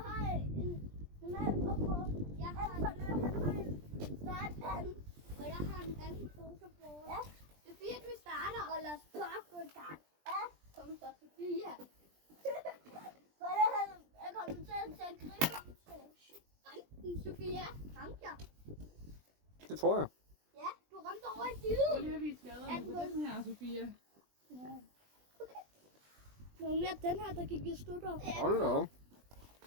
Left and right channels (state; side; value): late; left; 20 ms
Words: har en normal popcorn. Jeg har en startpande. Og jeg har en anden fotoboard. Ja, Sofia, du starter. Og lad os bare gå i gang. Ja, kom så, Sofia. For jeg kommer til at gribe ramten, Sofia. Ramte jeg? Det tror jeg. Ja, du ramte over i siden. Så lige har vi skaderne på den her, Sofia. Ja. Okay. Nogle mere den her, der gik i stykker. Ja. Hold da op.